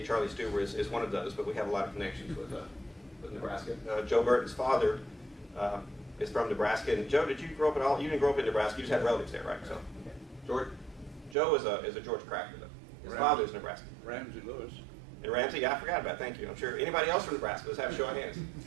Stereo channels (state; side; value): drops out; left; at 11.4 s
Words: Charlie Stuber is one of those, but we have a lot of connections with Nebraska. Joe Burton's father is from Nebraska. And Joe, did you grow up at all? You didn't grow up in Nebraska. You just had relatives there, right? So, George, Joe is a George Cracker, though. His father is Nebraska. Ramsey Lewis. And Ramsey, yeah, I forgot about. Thank you. I'm sure anybody else from Nebraska. Let's have a show of hands.